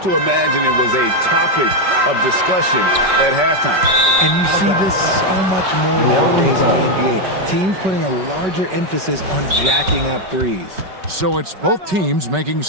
to imagine it was a topic of discussion at halftime. And you see this so much more nowadays in the NBA. Teams putting a larger emphasis on jacking up threes. So it's both teams making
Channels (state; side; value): late; left; 5.3 ms